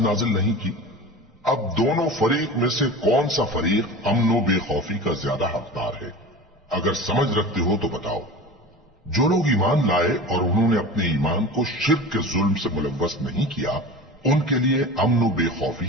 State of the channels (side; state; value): both; normal; correlation 0.34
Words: नाजिल नहीं की। अब दोनों फरीक में से कौन सा फरीक अमनो बेखौफी का ज्यादा हकदार है? अगर समझ रखते हो तो बताओ, जो लोग ईमान लाए और उन्होंने अपने ईमान को शिर्क के जुल्म से मुलव्वस नहीं किया, उनके लिए अमन व बेखौफी